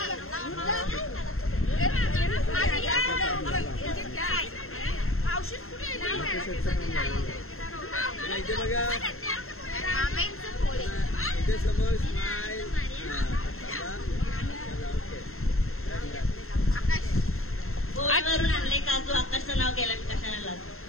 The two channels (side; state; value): right; late; 0.62 ms